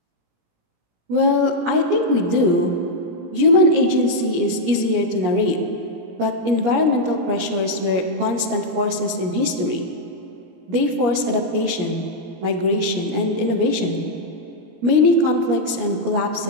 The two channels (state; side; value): late; left; 17 ms